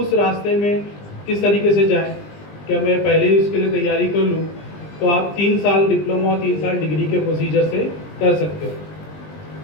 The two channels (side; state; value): right; late; 20 ms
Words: रास्ते में किस तरीके से जाएं, क्या मैं पहले ही उसके लिए तैयारी कर लूँ, तो आप 3 साल डिप्लोमा और 3 साल डिग्री के प्रोसीजर से कर सकते हो।